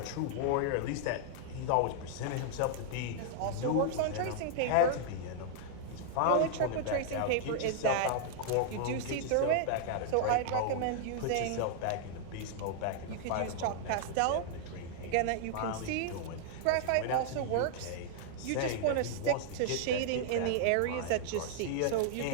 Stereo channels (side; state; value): both; different; correlation -0.01